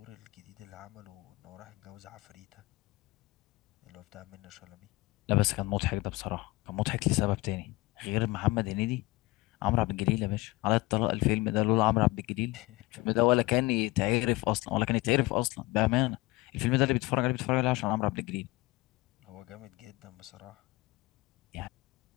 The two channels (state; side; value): quieter; right; 20.8 dB